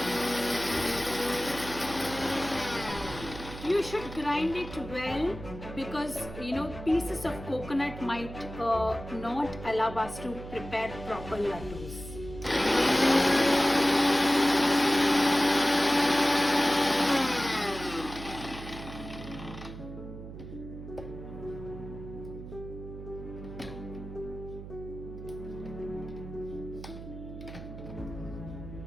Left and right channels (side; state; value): right; noise; hum, 12 dB below the sound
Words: You should grind it well because pieces of coconut might not allow us to prepare proper laddus.